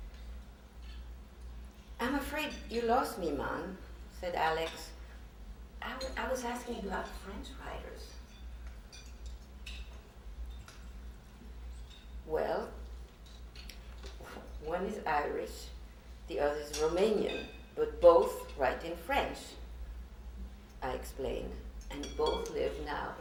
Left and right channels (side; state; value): both; identical; correlation 1.00